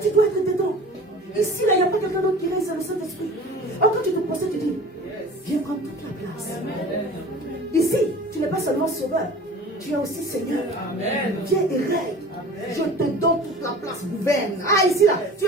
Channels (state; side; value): normal; both; correlation 0.41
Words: dois être dedans. Ici, là, il n'y a pas quelqu'un d'autre qui reste dans le Saint-Esprit. Alors quand tu te procèdes, tu dis, viens prendre toute la place. Ici, tu n'es pas seulement sauveur, tu es aussi Seigneur. Amen. Viens et règne. Je te donne toute la place, gouverne. Ah, ici, là, tu